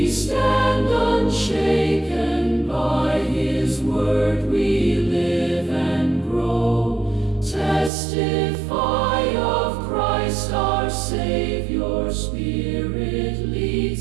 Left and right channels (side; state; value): left; drops out; at 7.9 s